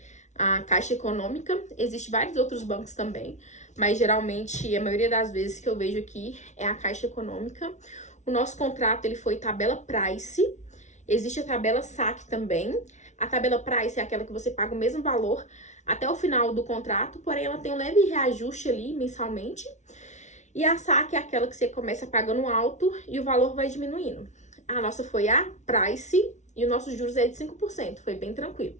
a Caixa Econômica, existem vários outros bancos também, mas geralmente, a maioria das vezes que eu vejo aqui é a Caixa Econômica. O nosso contrato, ele foi tabela Price, existe a tabela SAC também. A tabela Price é aquela que você paga o mesmo valor até o final do contrato, porém ela tem um leve reajuste ali mensalmente. E a SAC é aquela que você começa pagando alto e o valor vai diminuindo. A nossa foi a Price e o nosso juros é de 5%, foi bem tranquilo.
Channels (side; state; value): right; late; 0.34 ms